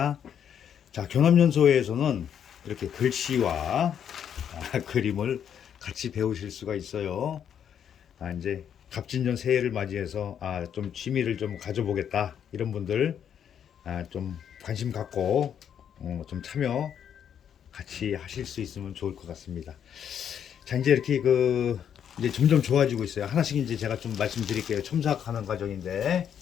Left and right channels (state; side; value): quieter; right; 8.7 dB